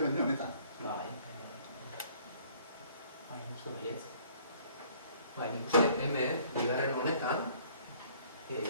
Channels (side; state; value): both; inverted; correlation -0.58